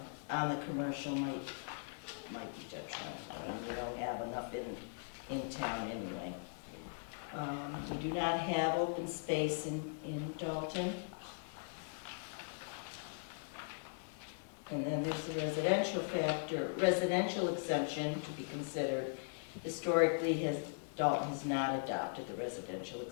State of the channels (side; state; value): right; silent; digital silence